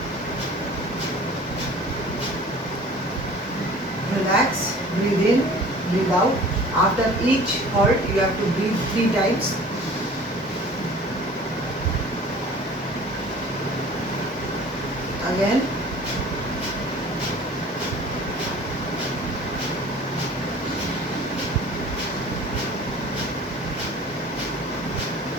Relax, breathe in, breathe out. After each halt, you have to breathe 3 times. Again.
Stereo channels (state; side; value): normal; both; correlation 0.46